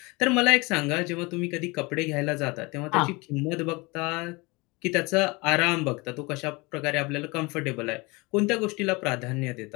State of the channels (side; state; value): right; quieter; 25.5 dB